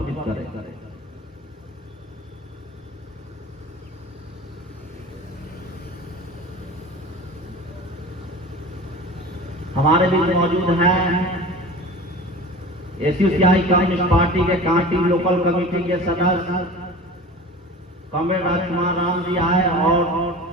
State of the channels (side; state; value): both; normal; correlation 0.37